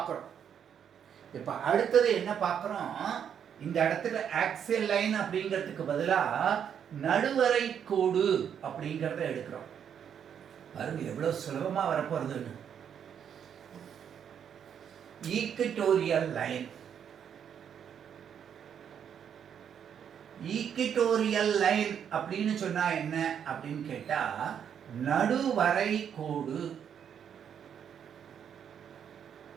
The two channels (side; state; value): left; quieter; 8.3 dB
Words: இப்போ அடுத்தது என்ன பார்க்குறோம், இந்த இடத்துல ஆக்சியல் லைன் அப்படிங்கிறதுக்கு பதிலாக நடுவரை கோடு அப்படிங்கிறத எடுக்கிறோம். பாருங்க எவ்வளோ சுலபமாக வரப்போறதுன்னு. Equatorial line. ஈக்வட்டோரியல் லைன் அப்படின்னு சொன்னா என்ன அப்படின்னு கேட்டா, நடுவரை கோடு.